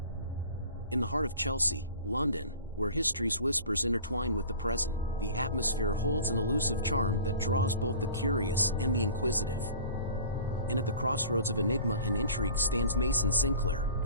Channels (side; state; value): both; inverted; correlation -0.42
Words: In the heart of Chelsea, London, where history's whispers intertwine with the present, the atmosphere holds an elusive charm that draws both the curious and the inquisitive. And at the crossroads of enigma and intrigue stands Mason Sinclair,